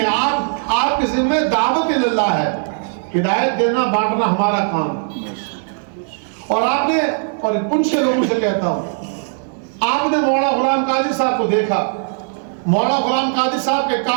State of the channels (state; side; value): silent; left; digital silence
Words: آپ کے ذمہ دعوت اللہ ہے. ہدایت دینا بانٹنا ہمارا کام. اور آپ نے، اور ان سے لوگوں سے کہتا ہوں، آپ نے مولانا غلام قادری صاحب کو دیکھا، مولانا غلام قادری صاحب کے